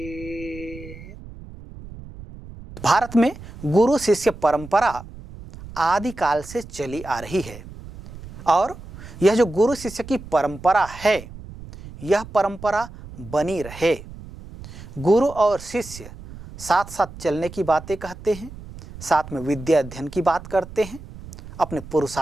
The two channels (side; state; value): right; noise; rumble, 15 dB below the sound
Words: भारत में गुरु शिष्य परंपरा आदि काल से चली आ रही है और यह जो गुरु शिष्य की परंपरा है यह परंपरा बनी रहे। गुरु और शिष्य साथ साथ चलने की बातें कहते हैं, साथ में विद्या अध्ययन की बात करते हैं, अपने